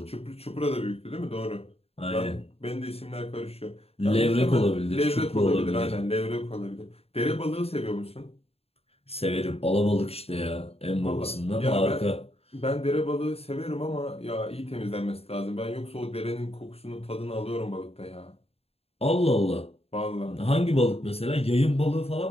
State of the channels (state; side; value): late; right; 0.29 ms